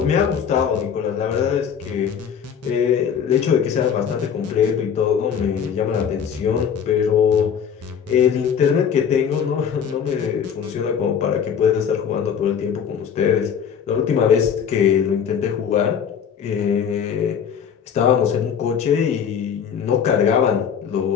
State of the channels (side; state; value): right; quieter; 7.7 dB